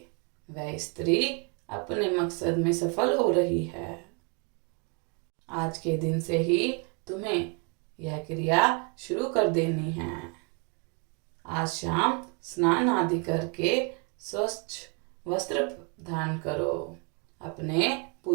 वह स्त्री अपने मकसद में सफल हो रही है। आज के दिन से ही तुम्हें यह क्रिया शुरू कर देनी है। आज शाम स्नान आदि करके स्वच्छ वस्त्र धारण करो। अपने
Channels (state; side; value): quieter; left; 35.3 dB